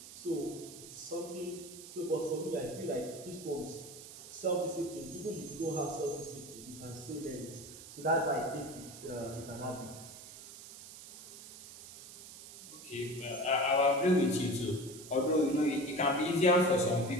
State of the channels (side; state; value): right; noise; hiss, 15 dB below the sound